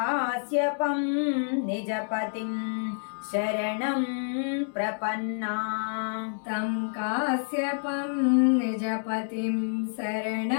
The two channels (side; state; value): right; silent; 59 dB below the other